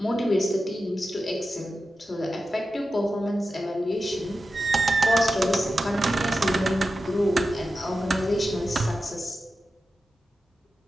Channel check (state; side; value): normal; both; correlation 0.92